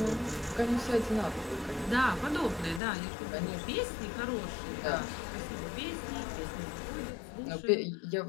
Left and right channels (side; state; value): right; drops out; at 2.8 s